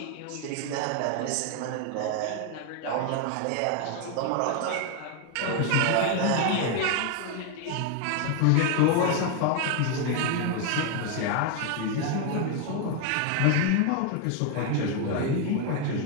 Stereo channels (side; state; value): both; different; correlation 0.01